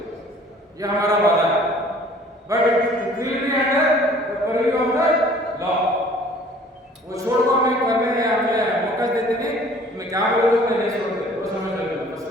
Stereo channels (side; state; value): both; normal; correlation 0.52